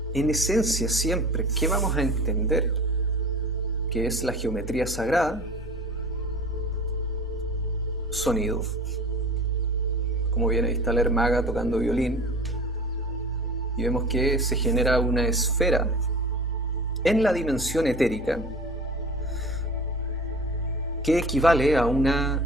en esencia siempre, ¿qué vamos a entender que es la geometría sagrada? Sonido. Como bien ahí está la Ermaga tocando violín, y vemos que se genera una esfera en la dimensión etérica que equivale a un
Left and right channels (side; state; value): both; normal; correlation 0.39